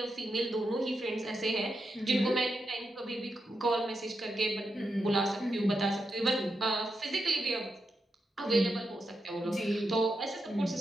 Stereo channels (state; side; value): normal; both; correlation 0.86